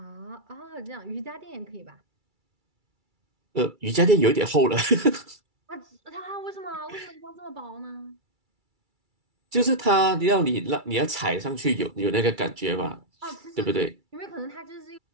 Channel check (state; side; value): late; left; 2.3 ms